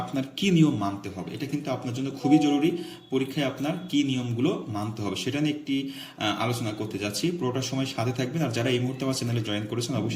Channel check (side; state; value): both; identical; correlation 1.00